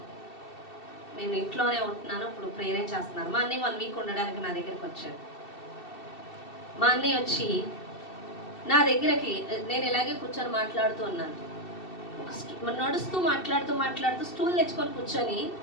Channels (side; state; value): right; late; 2.7 ms